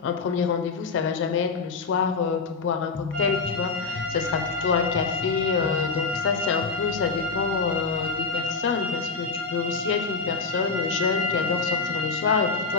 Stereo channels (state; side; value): quieter; right; 4.5 dB